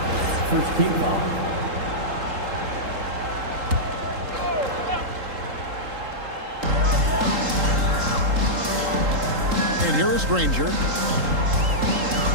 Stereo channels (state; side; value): late; left; 3.8 ms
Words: First team foul. And here is Granger.